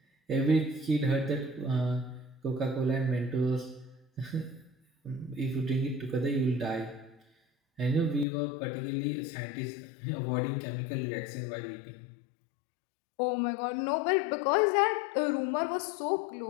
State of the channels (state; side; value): drops out; right; at 8.2 s